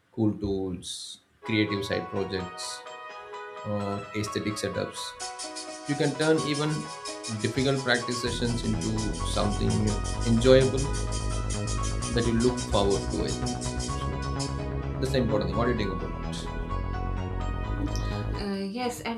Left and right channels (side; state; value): both; identical; correlation 1.00